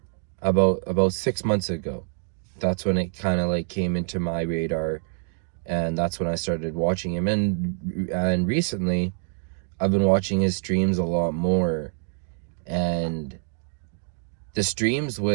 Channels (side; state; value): left; silent; digital silence